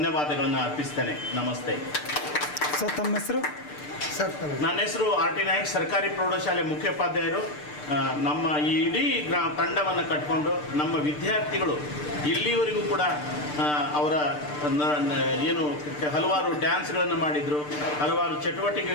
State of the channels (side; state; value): right; late; 6.7 ms